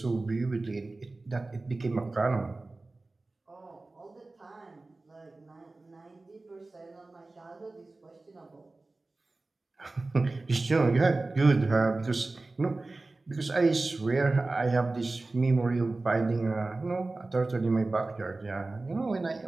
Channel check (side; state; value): left; quieter; 3.2 dB